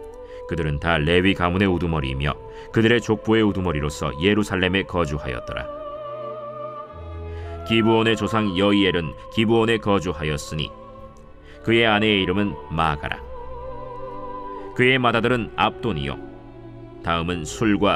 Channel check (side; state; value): both; identical; correlation 1.00